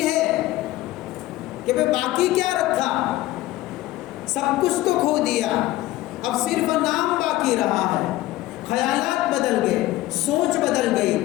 ہے کہ بھئی باقی کیا رکھا، سب کچھ تو کھو دیا، اب صرف نام باقی رہا ہے۔ خیالات بدل گئے، سوچ بدل گئی،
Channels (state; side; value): quieter; right; 16.6 dB